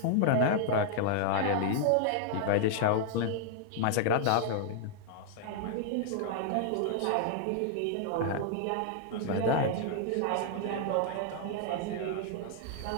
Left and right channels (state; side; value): different; both; correlation -0.01